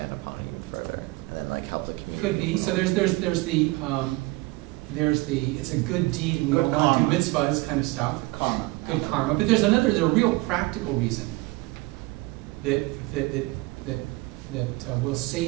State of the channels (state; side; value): quieter; left; 22.6 dB